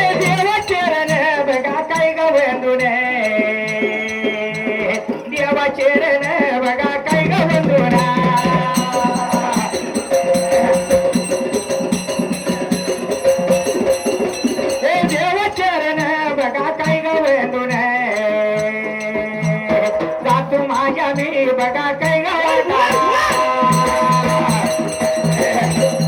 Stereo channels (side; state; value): both; identical; correlation 1.00